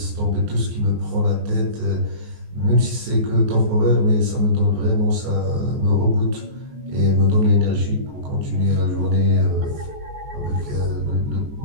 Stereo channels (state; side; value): late; left; 14 ms